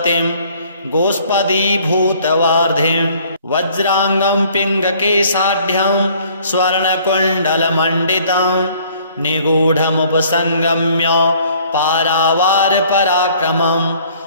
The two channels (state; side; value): inverted; both; correlation -0.57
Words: गोष्पदीभूतवार्धिं। वज्राङ्गं पिङ्गकेशाढ्यं स्वर्णकुण्डलमण्डितं निगूढमुपसङ्गम्य पारावारपराक्रमं।